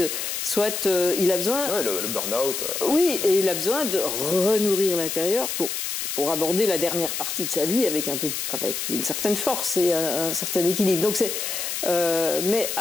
il a besoin... Oui, le burn-out. Oui, et il a besoin de renourrir l'intérieur pour aborder la dernière partie de sa vie avec une certaine force et un certain équilibre. Donc mais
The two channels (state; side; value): noise; left; hiss, 3 dB below the sound